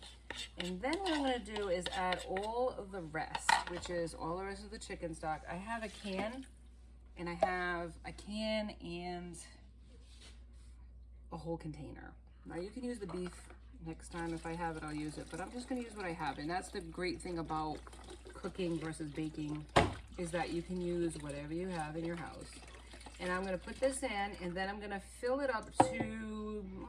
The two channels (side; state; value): both; identical; correlation 1.00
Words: And then what I'm gonna do is add all of the rest, which is all the rest of the chicken stock. I have a can, and I have a can and a whole container. Now you can use the beef next time. If I have it, I'll use it, but I'm just gonna use what I have. And that's the great thing about cooking versus baking, is that you can use whatever you have in your house. And I'm gonna put this in, and then I'm gonna fill it up to,